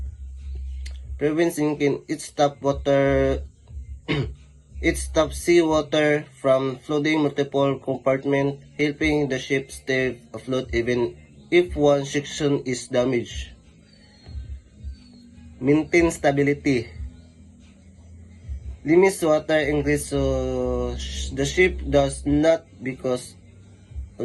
Prevents sinking. It stops seawater from flooding multiple compartments, helping the ship stay afloat even if one section is damaged. Maintain stability. Limits water ingress so the ship does not become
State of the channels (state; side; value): identical; both; correlation 1.00